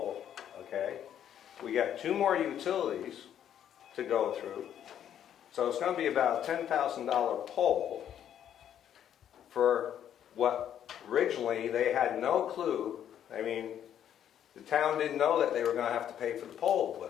okay? We got 2 more utilities to go through. So it's going to be about a $10,000 pole for what originally they had no clue. I mean, the town didn't know that they were going to have to pay for the pole,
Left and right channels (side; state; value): right; quieter; 9.9 dB